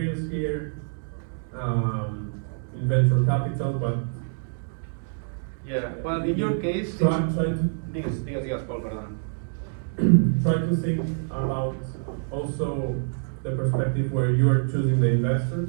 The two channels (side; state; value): left; silent; digital silence